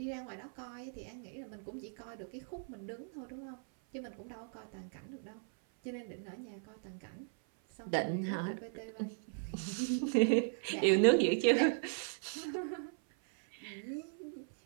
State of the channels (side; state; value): left; silent; 53 dB below the other